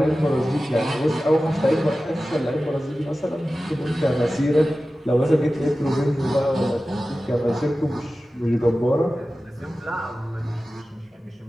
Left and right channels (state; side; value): normal; both; correlation 0.95